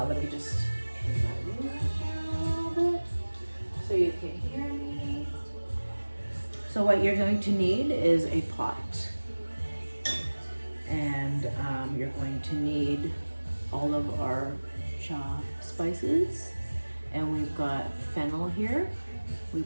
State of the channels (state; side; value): inverted; both; correlation -1.00